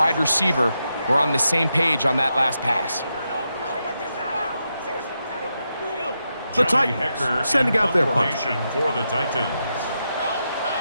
receiver were on the same page on that last pass. The Titans sending out their punch. For the Titans.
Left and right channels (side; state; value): both; inverted; correlation -0.85